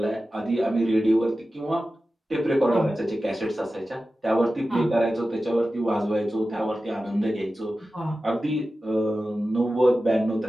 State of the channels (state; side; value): normal; both; correlation 0.94